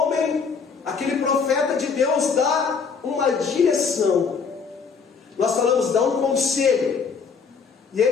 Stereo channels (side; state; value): right; quieter; 5.6 dB